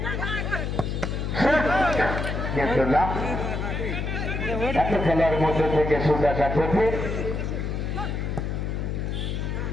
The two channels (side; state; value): left; noise; hum, 2 dB below the sound